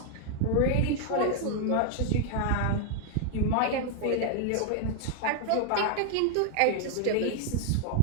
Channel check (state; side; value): different; both; correlation 0.00